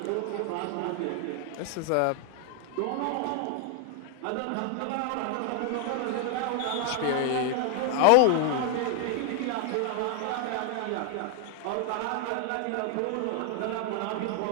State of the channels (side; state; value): both; different; correlation 0.00